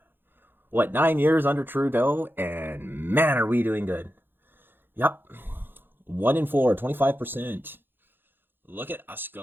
9 years under Trudeau, and man, are we doing good. Yep. 1 in 4, 25%. Look at us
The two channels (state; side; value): late; left; 0.099 ms